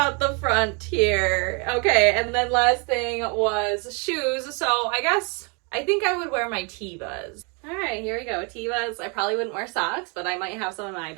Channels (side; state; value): left; quieter; 33.5 dB